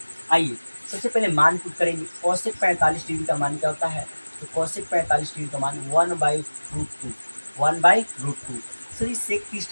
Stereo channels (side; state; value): both; inverted; correlation -1.00